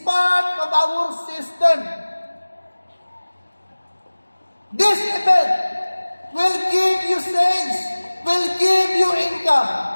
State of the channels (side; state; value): both; inverted; correlation -1.00